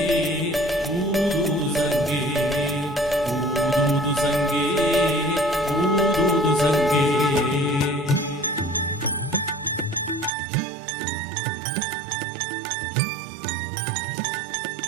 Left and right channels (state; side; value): drops out; left; at 10.3 s